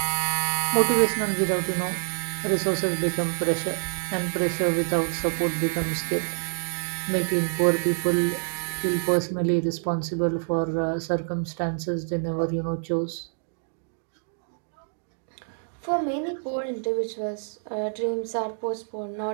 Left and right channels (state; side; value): silent; left; digital silence